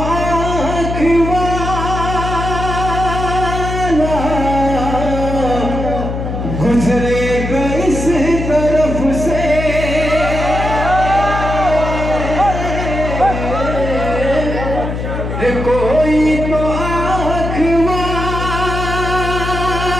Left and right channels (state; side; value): noise; left; hum, 4 dB below the sound